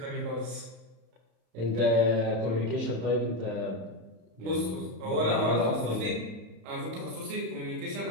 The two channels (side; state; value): left; late; 32 ms